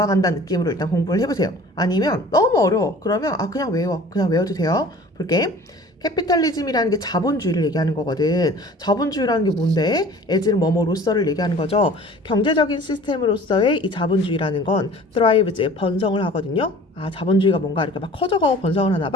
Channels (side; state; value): both; normal; correlation 0.46